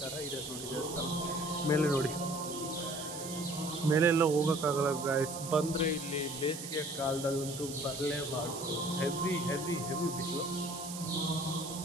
ಥರ ಇದೆ ನೋಡಿ ದೇವಸ್ಥಾನ. ಮೇಲೆ ನೋಡಿ, ಮೇಲೆಲ್ಲ ಹೋಗೋಕ್ಕಾಗಲ್ಲ ಗಾಯ್ಸ್. ಬಂದರೆ ಇಲ್ಲಿ ಬೇಸಿಗೆ ಕಾಲದಲ್ಲಂತೂ ಬರಲೇಬಾರ್ದು. ಹೆವಿ ಹೆವಿ ಹೆವಿ ಬಿಸಿಲು.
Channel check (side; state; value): right; noise; hiss, 9 dB below the sound